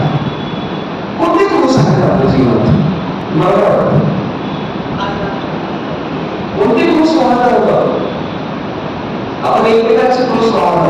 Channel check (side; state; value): both; identical; correlation 1.00